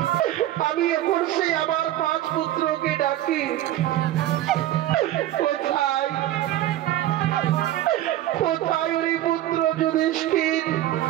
আমি এখন সেই আমার 5 পুত্রকে ডাকি। কোথায় কোথায় ওই পুত্র যুধিষ্ঠির,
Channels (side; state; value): left; quieter; 13.8 dB